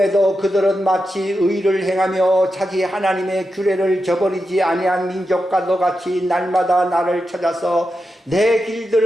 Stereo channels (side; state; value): both; normal; correlation 0.89